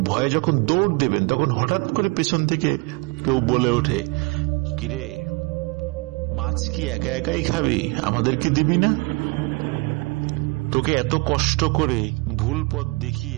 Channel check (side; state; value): left; quieter; 27.7 dB